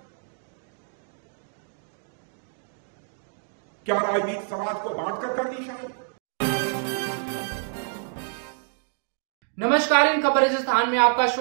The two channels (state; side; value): silent; left; digital silence